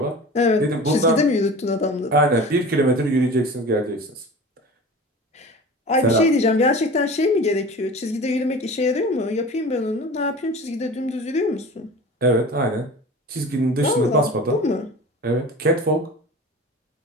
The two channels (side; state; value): both; normal; correlation 0.37